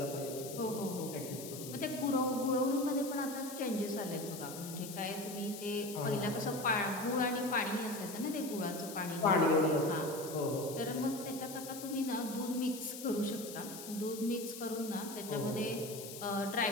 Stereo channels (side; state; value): left; noise; hiss, 11 dB below the sound